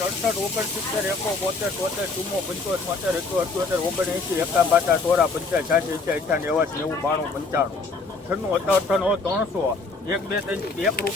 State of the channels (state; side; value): quieter; right; 3.8 dB